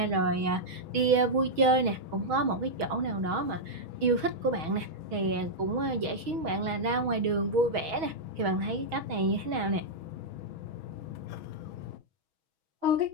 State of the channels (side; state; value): left; late; 6.3 ms